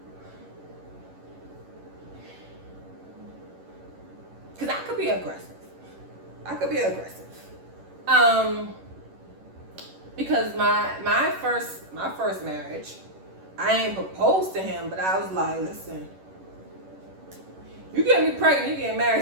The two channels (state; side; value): late; left; 11 ms